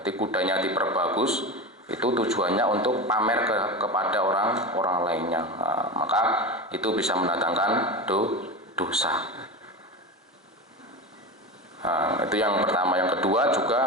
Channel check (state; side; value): normal; both; correlation 0.24